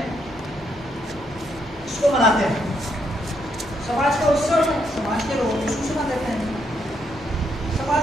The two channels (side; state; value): both; normal; correlation 0.76